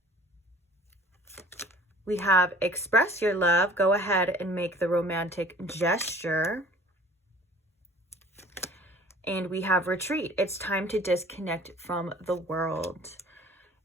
We have express your love. Go ahead and make the romantic gesture. And we have retreat. It's time to disconnect from the world.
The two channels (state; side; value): normal; both; correlation 0.49